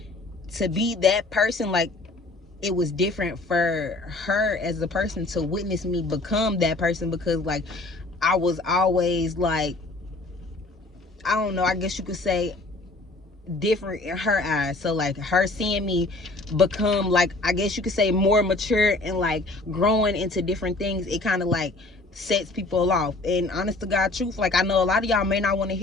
to be that person, like, it was different for her as a person to witness me become that person, because, like, I was always, like, I don't know, I guess you could say, different in her eyes. So, like, her seeing me become, like, I guess you could say, more mature and, like, growing into different things, it kind of, like, sets people off. And honest to God truth, like, I know a lot of y'all may not want to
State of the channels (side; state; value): right; quieter; 3.0 dB